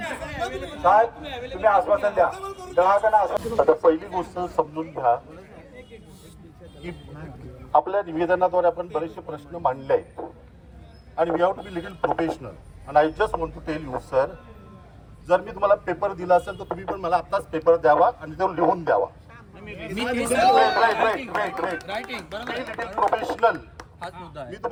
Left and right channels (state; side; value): identical; both; correlation 1.00